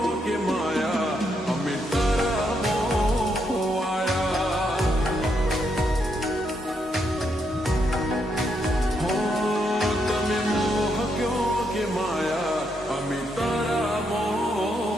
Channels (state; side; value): normal; both; correlation 0.78